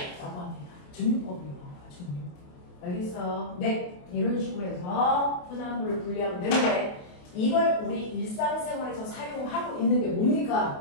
합니다. 증류법을 이용한 거야. 증류. 알겠어? 네. 이런 식으로 해서 혼합물을 분리하면 되는데 이걸 우리 일상생활에서 사용하고 있는 게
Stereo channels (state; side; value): late; right; 28 ms